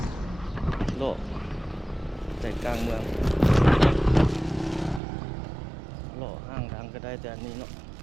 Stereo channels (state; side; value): drops out; left; at 5.0 s